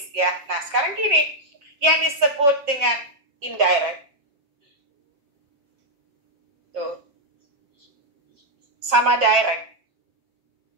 ya. Nah, sekarang gini, yang disebut dengan indirect, tuh, sama direct,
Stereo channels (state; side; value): late; left; 7.2 ms